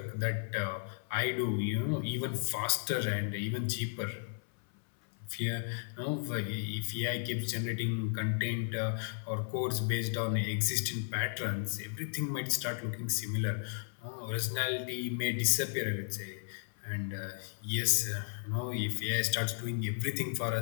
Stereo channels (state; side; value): silent; right; 55 dB below the other